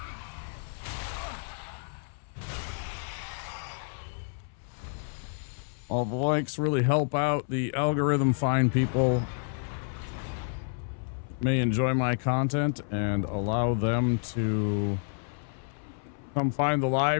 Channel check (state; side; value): silent; right; 58 dB below the other